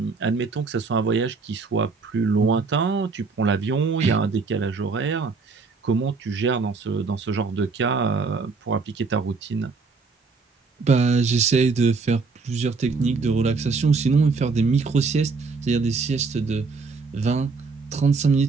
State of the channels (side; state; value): left; quieter; 4.4 dB